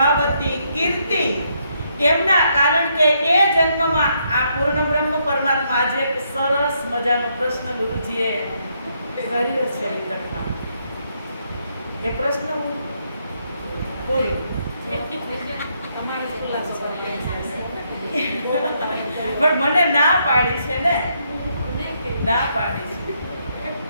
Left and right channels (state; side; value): inverted; both; correlation -0.75